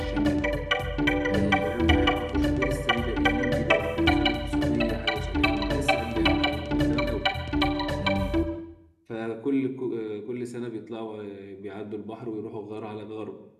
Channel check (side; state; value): both; identical; correlation 1.00